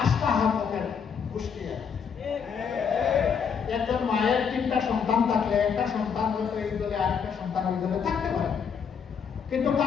আস্থা হাত ওদের পুষ্টিয়া। একজন মায়ের 3টা সন্তান থাকলে একটা সন্তান হয়তো এই দলে, আরেকটা সন্তান ওই দলে থাকতে পারে, কিন্তু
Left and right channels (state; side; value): quieter; right; 6.7 dB